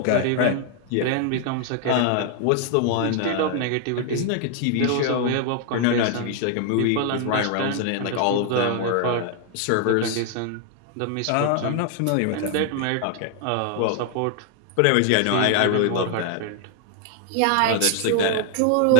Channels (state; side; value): different; both; correlation 0.00